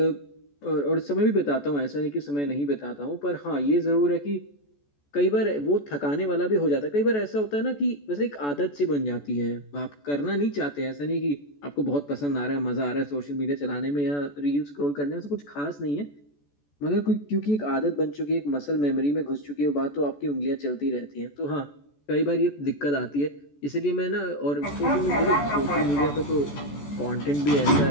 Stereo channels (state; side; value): late; right; 14 ms